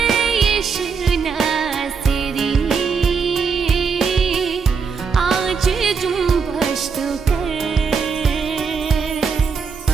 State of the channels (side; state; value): left; quieter; 5.7 dB